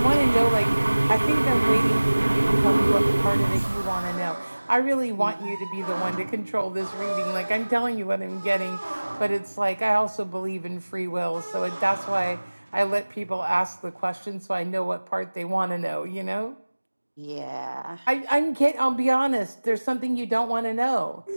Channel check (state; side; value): inverted; both; correlation -1.00